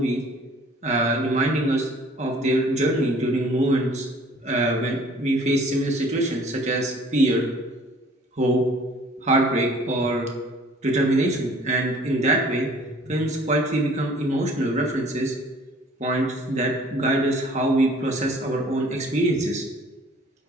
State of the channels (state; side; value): normal; both; correlation 0.53